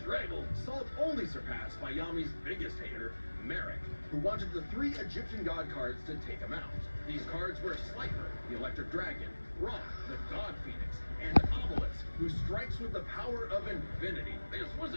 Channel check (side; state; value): both; inverted; correlation -1.00